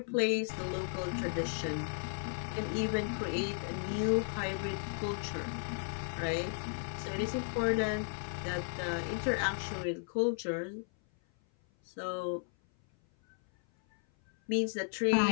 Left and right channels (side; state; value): right; silent; 55 dB below the other